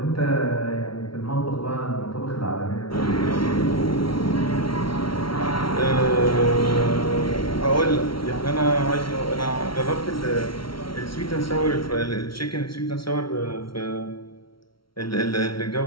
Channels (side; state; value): right; late; 0.74 ms